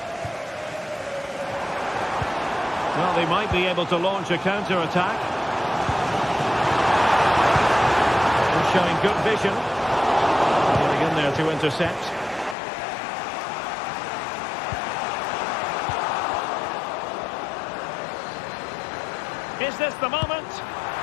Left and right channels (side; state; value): right; drops out; at 12.6 s